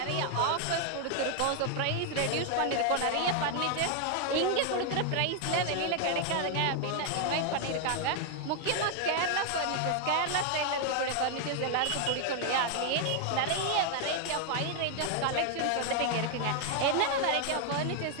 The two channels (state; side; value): different; both; correlation 0.00